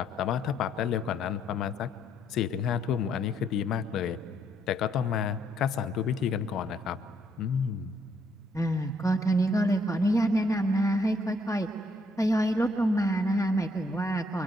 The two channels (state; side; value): normal; both; correlation 0.71